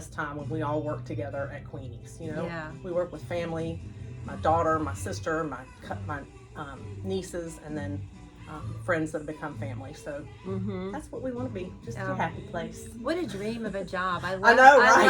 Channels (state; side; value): identical; both; correlation 1.00